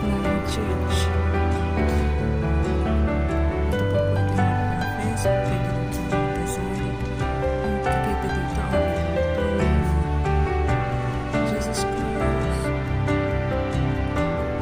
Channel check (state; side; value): identical; both; correlation 1.00